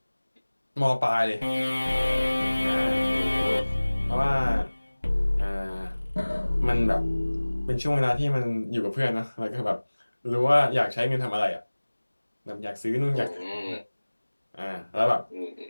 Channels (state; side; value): inverted; both; correlation -1.00